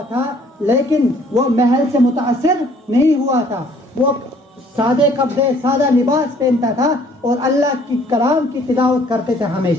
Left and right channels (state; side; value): normal; both; correlation 0.59